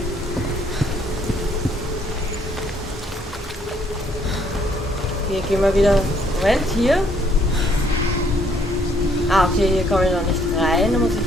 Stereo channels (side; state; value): both; normal; correlation 0.66